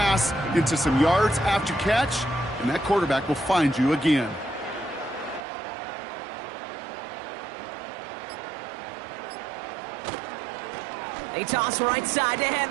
into some yards after catch, and that quarterback will find you again. They toss right side to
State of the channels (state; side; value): drops out; left; at 5.5 s